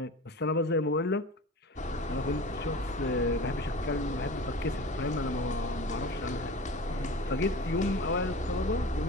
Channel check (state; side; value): normal; both; correlation 0.36